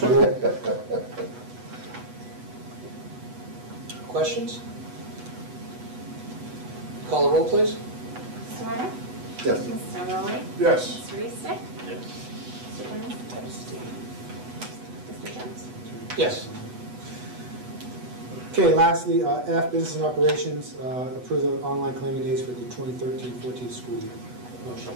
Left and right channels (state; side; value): late; left; 8.1 ms